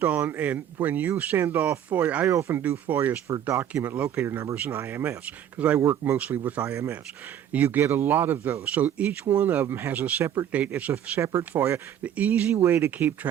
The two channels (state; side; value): quieter; left; 10.0 dB